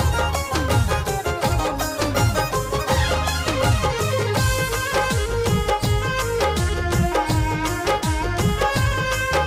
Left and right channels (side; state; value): both; identical; correlation 1.00